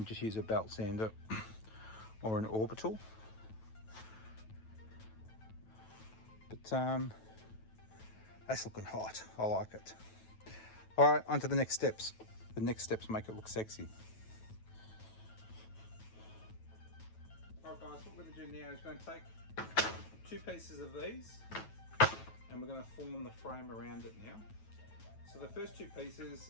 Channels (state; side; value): late; right; 9.2 ms